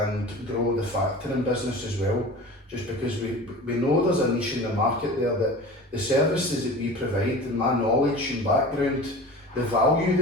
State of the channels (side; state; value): both; normal; correlation 0.36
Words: grow the factoring business as well, just because we know there's a niche in the market there, that the services that we provide and my knowledge and background, the value